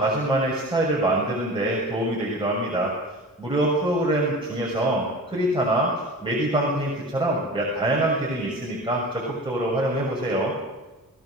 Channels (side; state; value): both; normal; correlation 0.35